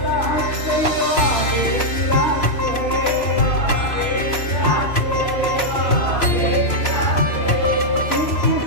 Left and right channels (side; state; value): right; late; 3.0 ms